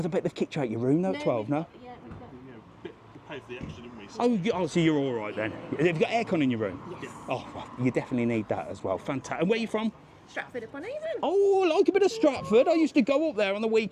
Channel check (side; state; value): both; identical; correlation 1.00